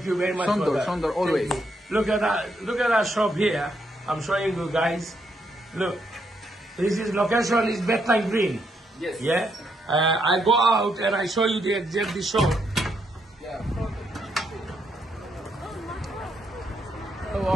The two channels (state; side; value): normal; both; correlation 0.77